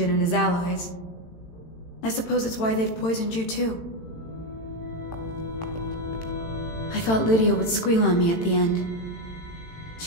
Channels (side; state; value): right; late; 18 ms